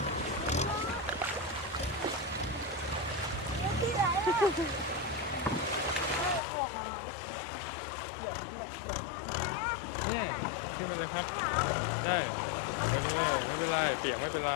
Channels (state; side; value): drops out; right; at 6.4 s